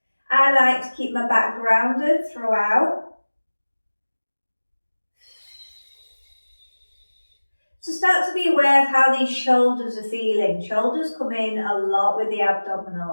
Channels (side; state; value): both; inverted; correlation -1.00